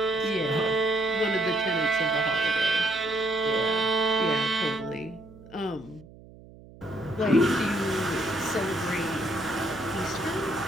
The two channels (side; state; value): right; noise; hum, 21 dB below the sound